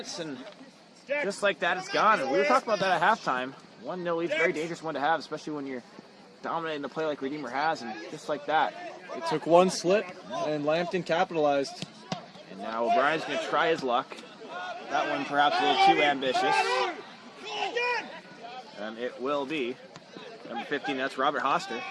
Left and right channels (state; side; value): identical; both; correlation 1.00